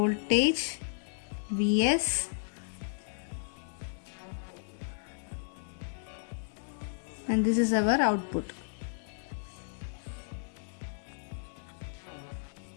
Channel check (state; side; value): silent; right; digital silence